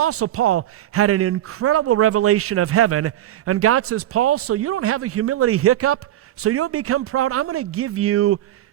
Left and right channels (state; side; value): quieter; left; 13.0 dB